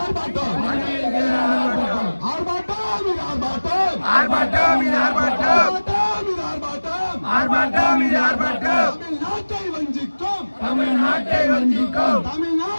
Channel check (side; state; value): both; inverted; correlation -1.00